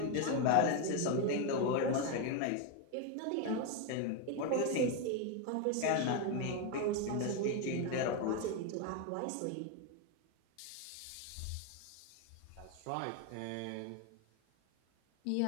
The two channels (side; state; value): both; different; correlation 0.02